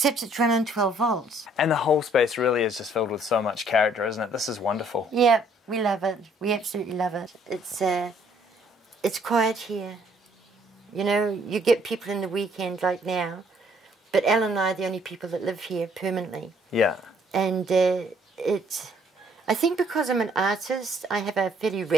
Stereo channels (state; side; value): normal; both; correlation 0.63